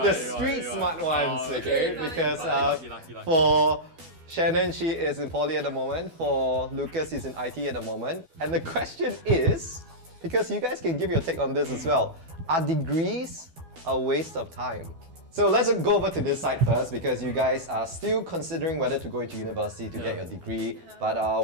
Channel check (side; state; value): left; late; 12 ms